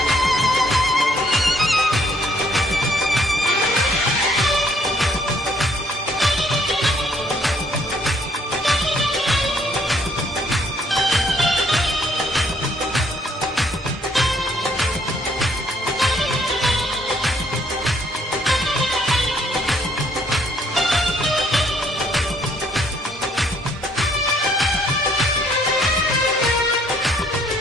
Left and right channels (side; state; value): both; normal; correlation 0.65